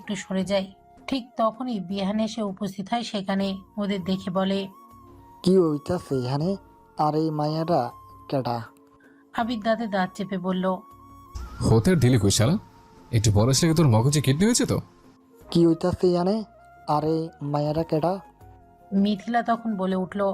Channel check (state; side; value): identical; both; correlation 1.00